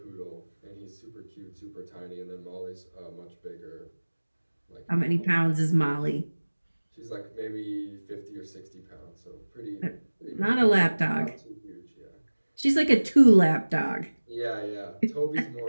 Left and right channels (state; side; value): inverted; both; correlation -1.00